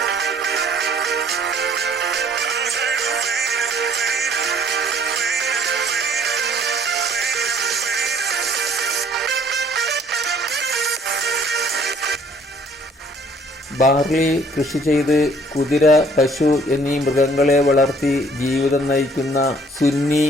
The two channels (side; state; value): both; normal; correlation 0.58